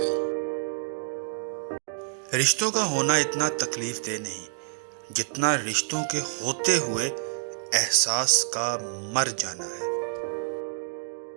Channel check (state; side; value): silent; left; digital silence